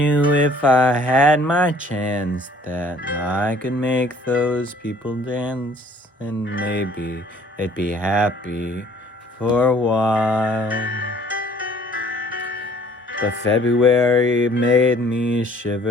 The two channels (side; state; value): both; normal; correlation 0.56